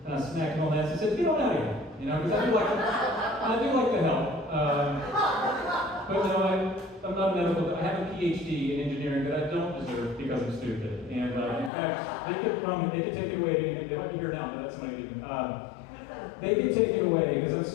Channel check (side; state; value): right; drops out; at 11.7 s